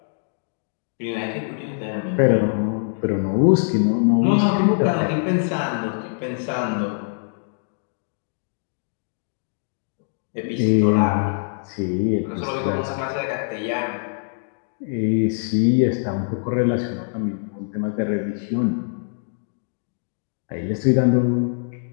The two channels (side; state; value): right; silent; digital silence